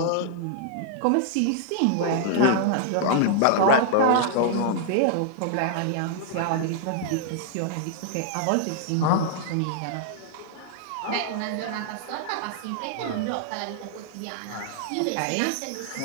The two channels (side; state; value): both; different; correlation -0.01